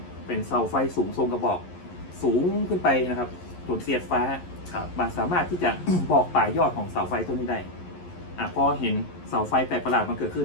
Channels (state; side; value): late; right; 11 ms